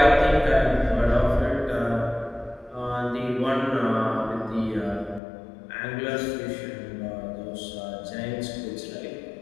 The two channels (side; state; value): right; drops out; at 5.2 s